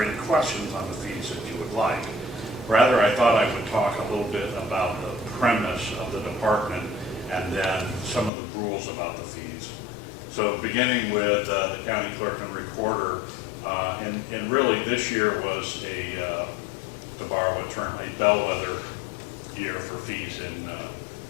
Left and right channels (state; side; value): drops out; right; at 8.3 s